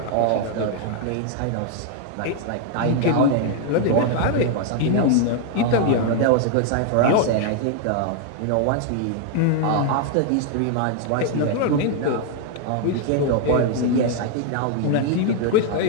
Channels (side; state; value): both; different; correlation 0.00